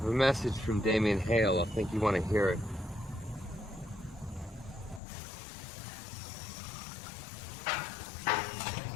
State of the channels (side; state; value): right; drops out; at 5.0 s